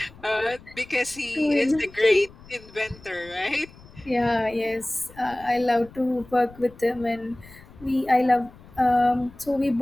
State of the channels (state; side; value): noise; left; rumble, 22 dB below the sound